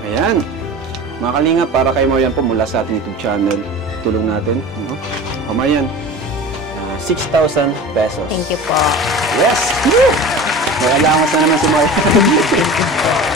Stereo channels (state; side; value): normal; both; correlation 0.35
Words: Ayan. Mga Kalinga, para kay Marian po mula sa ating YouTube channel, tulong natin. O Marian, 6,000 pesos. Thank you po. Yes! Woo! May allowance na naman si Marian.